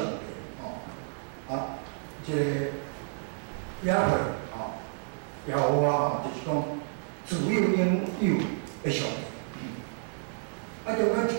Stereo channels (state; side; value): silent; left; 58 dB below the other